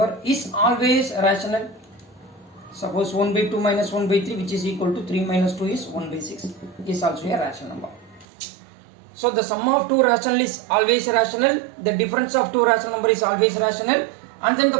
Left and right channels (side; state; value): left; drops out; at 8.2 s